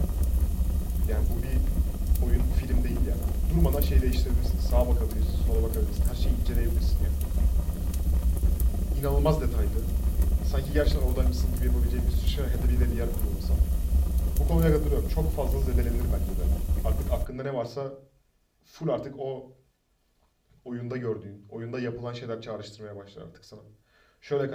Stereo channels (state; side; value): identical; both; correlation 1.00